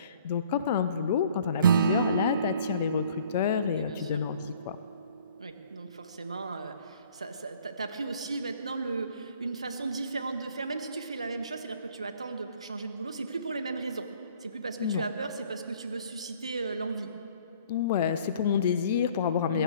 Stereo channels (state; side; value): inverted; both; correlation -0.56